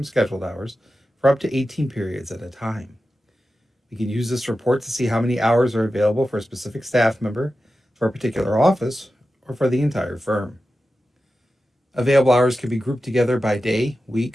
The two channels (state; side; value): normal; both; correlation 0.92